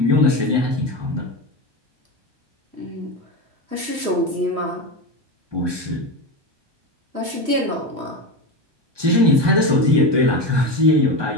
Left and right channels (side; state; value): left; late; 1.2 ms